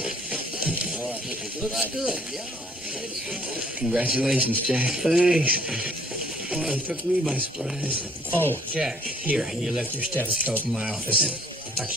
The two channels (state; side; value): normal; both; correlation 0.60